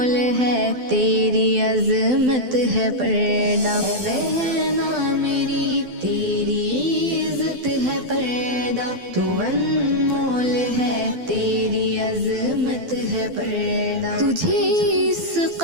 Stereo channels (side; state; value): left; late; 12 ms